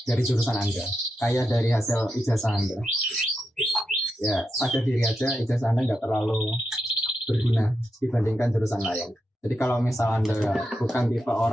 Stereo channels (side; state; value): both; normal; correlation 0.86